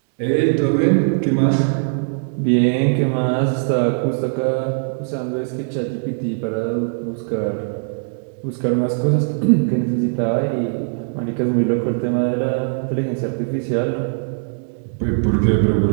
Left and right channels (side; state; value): left; silent; digital silence